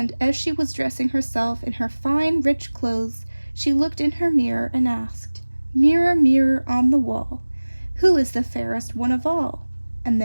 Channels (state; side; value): inverted; both; correlation -1.00